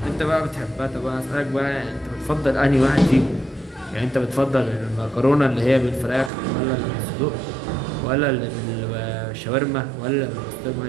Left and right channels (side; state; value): left; drops out; at 6.3 s